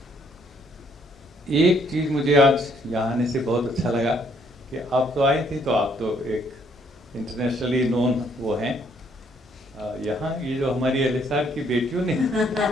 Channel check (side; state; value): both; normal; correlation 0.67